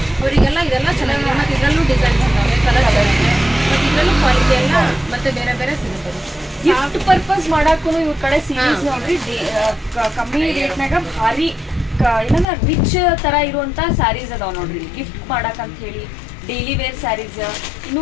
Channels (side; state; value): right; drops out; at 12.5 s